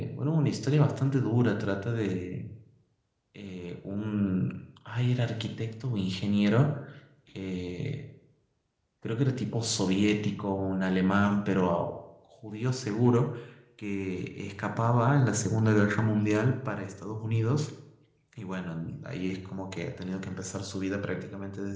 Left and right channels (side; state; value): both; identical; correlation 1.00